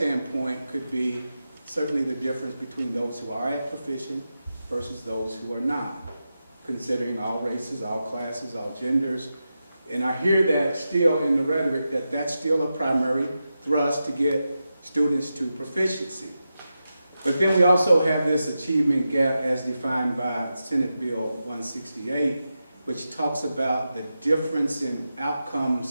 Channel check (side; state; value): both; inverted; correlation -0.90